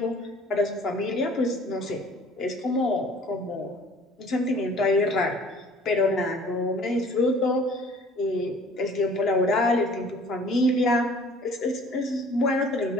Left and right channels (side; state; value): both; normal; correlation 0.51